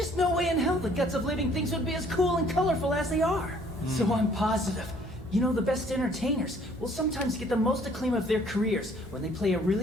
no way in hell the guts of living things would be as cool and colorful as they are. So I'm positive. You know, the best entertainers will sometimes get the most acclaim of their careers when they play a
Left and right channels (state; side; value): normal; both; correlation 0.59